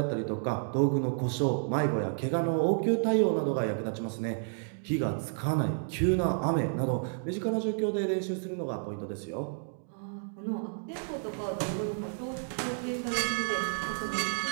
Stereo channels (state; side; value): silent; left; digital silence